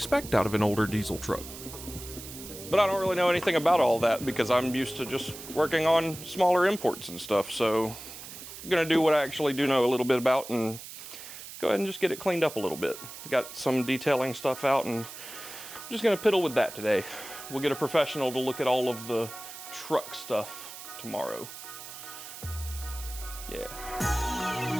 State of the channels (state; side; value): noise; right; hiss, 13 dB below the sound